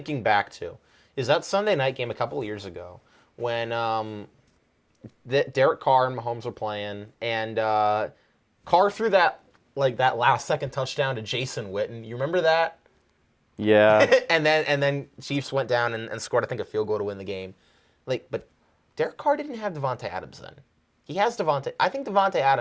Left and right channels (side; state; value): both; identical; correlation 1.00